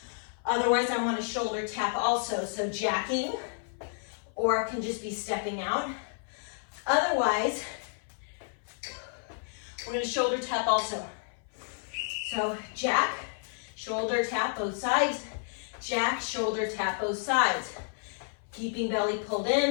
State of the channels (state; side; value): silent; right; 55 dB below the other